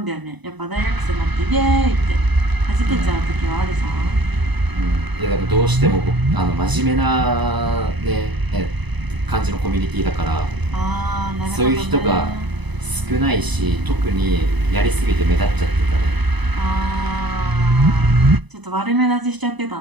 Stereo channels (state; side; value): late; left; 1.0 ms